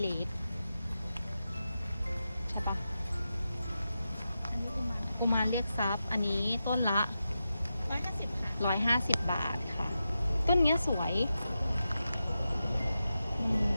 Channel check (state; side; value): inverted; both; correlation -0.90